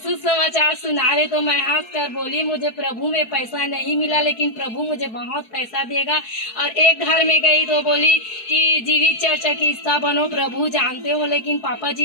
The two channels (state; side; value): late; right; 4.6 ms